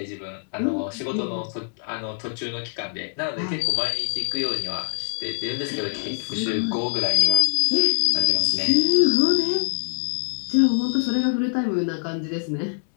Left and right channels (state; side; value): silent; right; digital silence